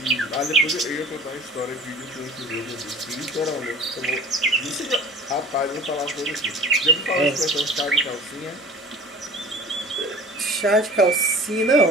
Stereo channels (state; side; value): normal; both; correlation 0.42